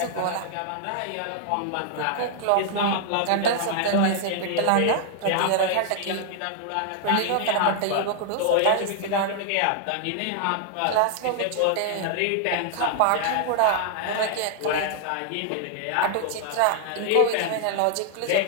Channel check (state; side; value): different; both; correlation 0.00